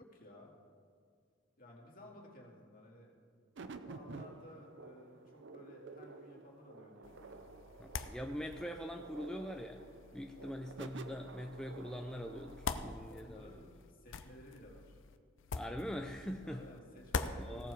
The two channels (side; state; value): both; normal; correlation 0.57